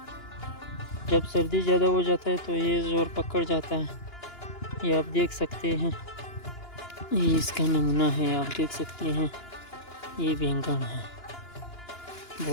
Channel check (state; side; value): late; right; 2.9 ms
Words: जब सर्दी ज़्यादा हो जाता है तो ये ज़ोर पकड़ जाता है। ये आप देख सकते हैं, ये इसका नमूना है, आप देख सकते हैं। ये बैंगन है,